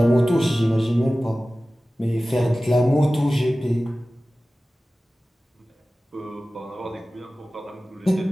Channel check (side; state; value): both; normal; correlation 0.96